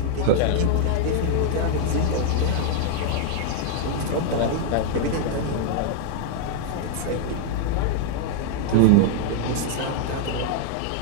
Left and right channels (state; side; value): different; both; correlation 0.00